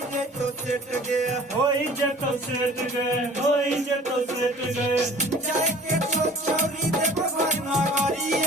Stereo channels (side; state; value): both; normal; correlation 0.46